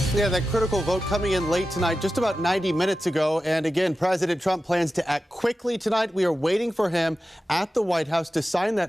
Yeah, that critical vote coming in late tonight, just about 90 minutes ago. And again, President Trump plans to act quickly tonight. We are waiting for him at the White House to sign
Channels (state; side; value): normal; both; correlation 0.93